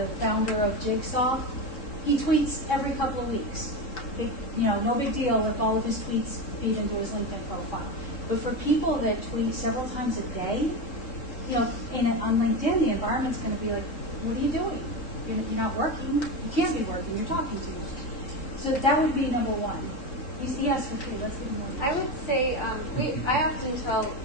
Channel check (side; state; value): right; late; 3.7 ms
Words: founder of Jigsaw, he tweets every couple of weeks. No big deal if all of his tweets feed into his LinkedIn profile. But for people that tweet several times a day, on LinkedIn, the environment's going to be like, what are you doing? You're not working. You can't be working. You're talking too much. So that would be number 1. Yes, okay, let's get more. I would say I often tell